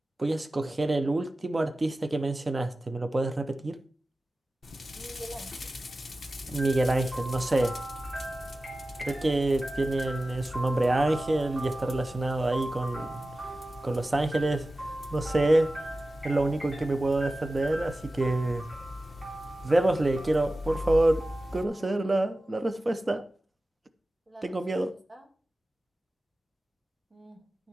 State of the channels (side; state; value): both; normal; correlation 0.95